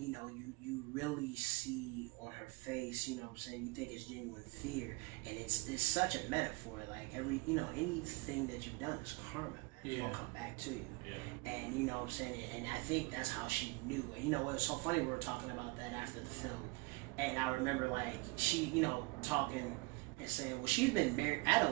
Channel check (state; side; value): quieter; left; 26.2 dB